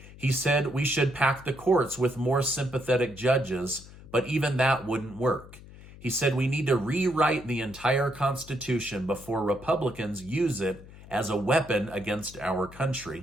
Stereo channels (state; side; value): noise; left; hum, 18 dB below the sound